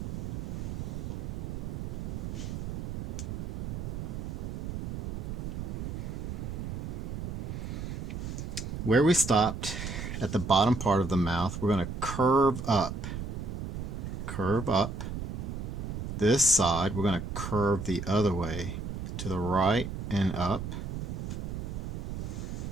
Where we stopped at the bottom part of the mouth, we're going to curve up. Curve up. This side, we're going to curve the other way, to the right and up.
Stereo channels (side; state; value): right; noise; rumble, 5 dB below the sound